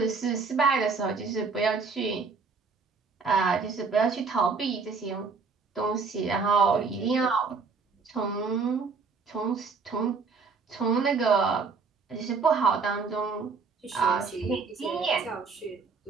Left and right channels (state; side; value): quieter; left; 4.8 dB